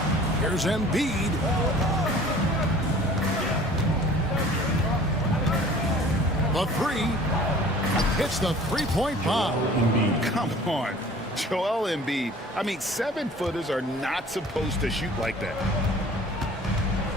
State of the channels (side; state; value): both; normal; correlation 0.48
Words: Here's Embiid. The 3 hits the three-point bomb. Come on, Joel Embiid. I mean, 7-footers are not supposed to shoot like that.